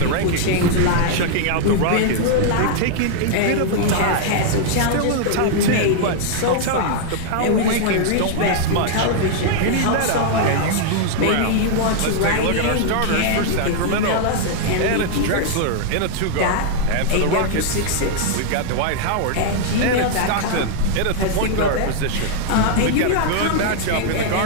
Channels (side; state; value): both; different; correlation -0.01